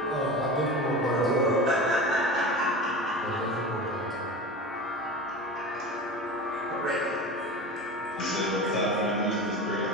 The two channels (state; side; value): normal; both; correlation 0.30